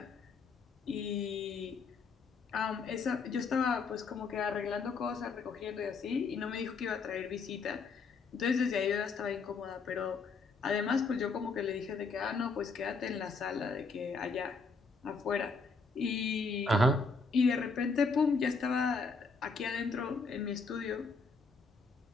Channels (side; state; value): right; quieter; 4.4 dB